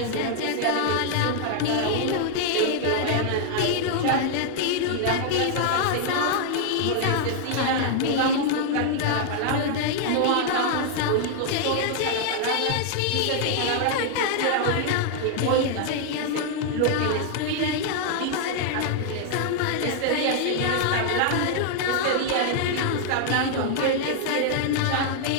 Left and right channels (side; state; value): both; different; correlation 0.00